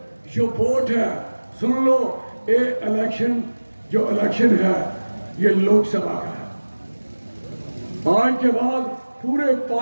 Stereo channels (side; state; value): both; inverted; correlation -1.00